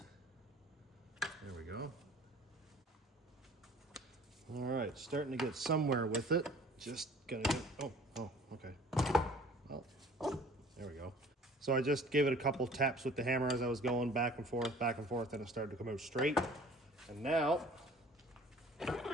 There we go. All right, starting to get somewhere with it. Just gonna get, oh, okay. Well, there we go. So I just gave it a couple taps with the hammer as I was going back and forth, and it started to come out straight. And now,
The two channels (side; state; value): both; normal; correlation 0.50